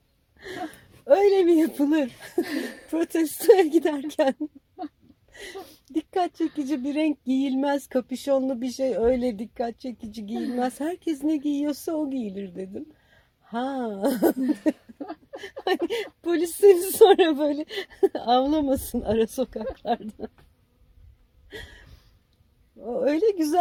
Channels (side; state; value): both; identical; correlation 1.00